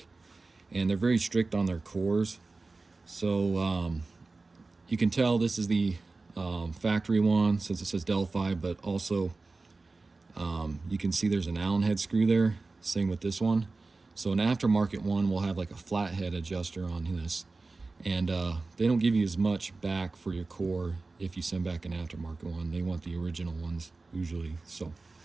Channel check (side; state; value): left; quieter; 3.6 dB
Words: And they're very strict on their cores. So you can tell this is the factory one since it says Delphi, but also you can see there's an Allen head screw there. Same with this one. So an aftermarket one will have like a flathead adjuster on this. And they don't give you as much back for your core if you send back an aftermarket one. They want the original ones usually. So